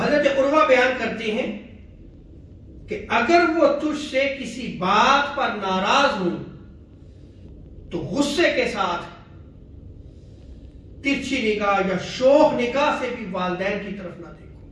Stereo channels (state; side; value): identical; both; correlation 1.00